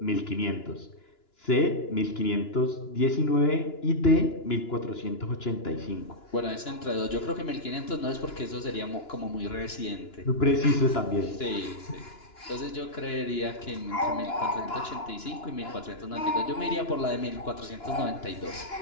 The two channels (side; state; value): right; late; 2.9 ms